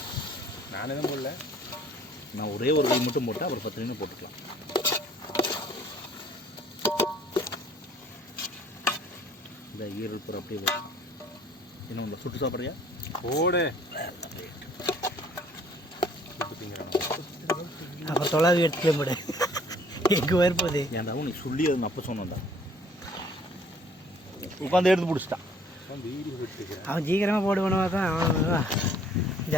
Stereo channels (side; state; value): both; normal; correlation 0.57